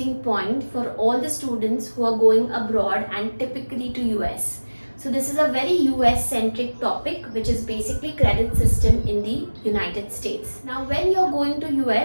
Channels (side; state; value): both; inverted; correlation -1.00